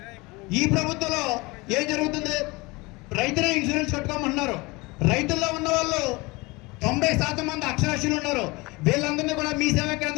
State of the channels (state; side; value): quieter; right; 24.4 dB